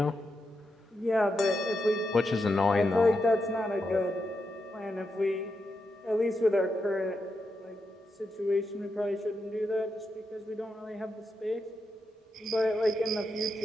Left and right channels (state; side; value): normal; both; correlation 0.85